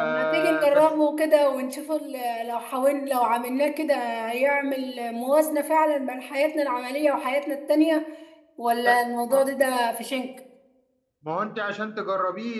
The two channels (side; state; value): both; identical; correlation 1.00